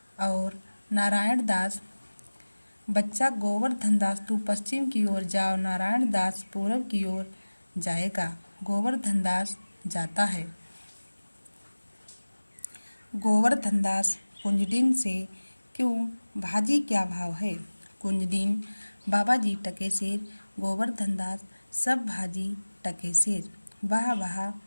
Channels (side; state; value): both; inverted; correlation -1.00